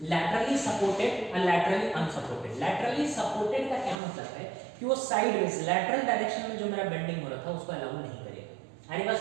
laterally supported और लैटरली अनसपोर्टेड। लैटरली सपोर्टेड का क्या मतलब है कि वो साइडवेज लैटरल डायरेक्शन में जो मेरा बेंडिंग हो रहा था उसको अलाउ नहीं करेगा, अरे बात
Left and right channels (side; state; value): left; drops out; at 4.0 s